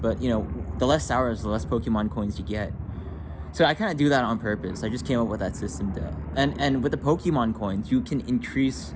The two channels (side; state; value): both; identical; correlation 1.00